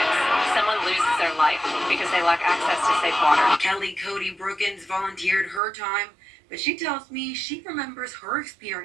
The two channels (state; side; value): drops out; left; at 5.6 s